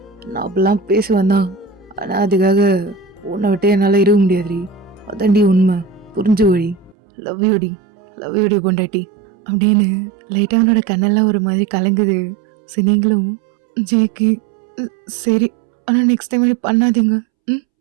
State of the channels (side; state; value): left; drops out; at 7.0 s